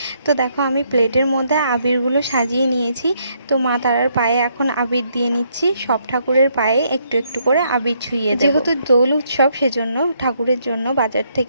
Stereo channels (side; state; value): both; inverted; correlation -0.72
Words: তো দেখো আমি প্লেটের মধ্যে আবিরগুলো সাজিয়ে নিয়েছি। তো মা তারার পায়ে এখন আবির দিয়ে নিচ্ছি, সব ঠাকুরের পায়ে একটু একটু করে আবির ছুঁয়ে দেব। যেহেতু দোল উৎসব সেজন্য ঠাকুরের জন্য বাজার